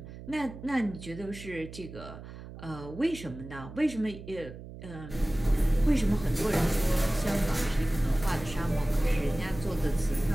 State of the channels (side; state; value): right; noise; hum, 13 dB below the sound